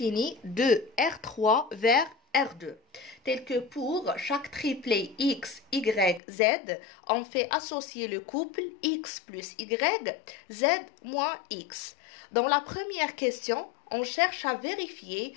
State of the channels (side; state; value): right; drops out; at 6.2 s